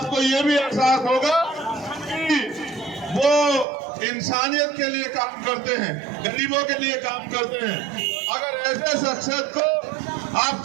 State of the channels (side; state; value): left; drops out; at 3.7 s